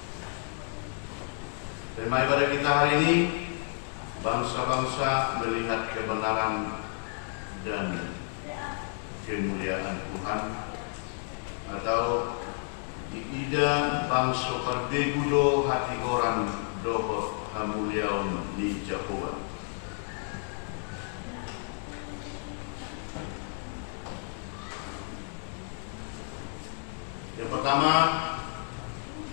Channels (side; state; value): right; silent; 57 dB below the other